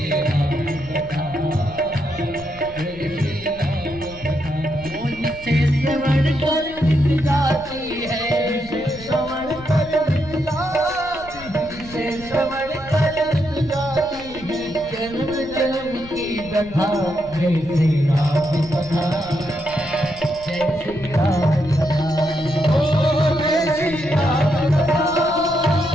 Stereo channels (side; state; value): left; noise; rumble, 18 dB below the sound